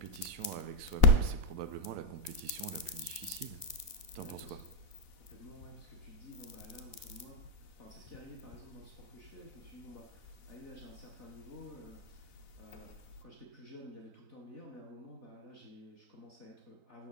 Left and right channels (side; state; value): left; late; 4.0 ms